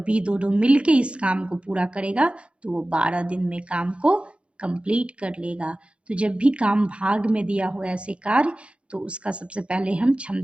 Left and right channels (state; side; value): late; left; 0.059 ms